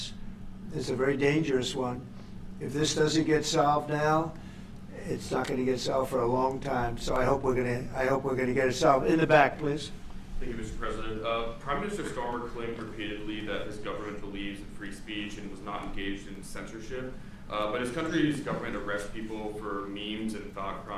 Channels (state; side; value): identical; both; correlation 1.00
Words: It's a very dangerous one. If this doesn't get solved now, it's not going to get solved for a long time. So I hope we're going to get it solved. In the back, please. Thank you, Mr. President. Prime Minister Starmer claimed repeatedly that his government believes in free speech and was not engaged in censorship. But his country's government arrests people for memes and thought